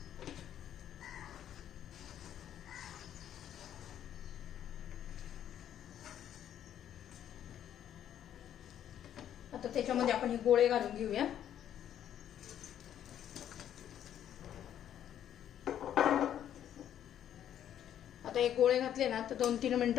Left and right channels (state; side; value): quieter; right; 10.4 dB